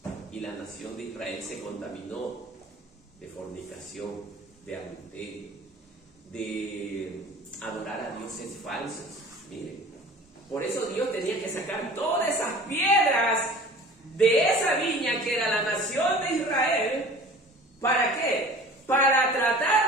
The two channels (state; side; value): normal; both; correlation 0.43